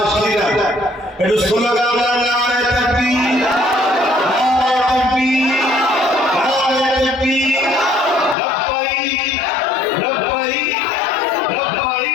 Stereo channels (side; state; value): right; drops out; at 8.3 s